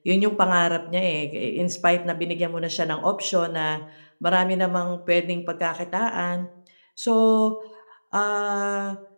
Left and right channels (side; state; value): both; inverted; correlation -1.00